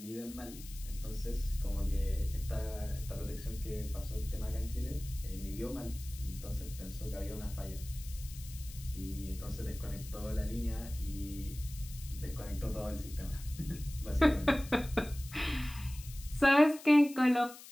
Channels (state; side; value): noise; left; hiss, 16 dB below the sound